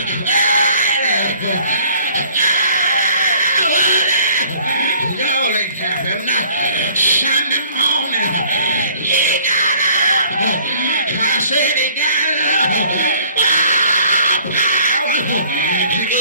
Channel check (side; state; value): both; inverted; correlation -0.56